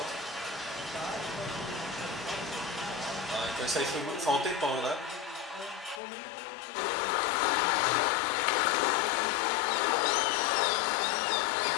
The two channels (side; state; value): right; drops out; at 6.0 s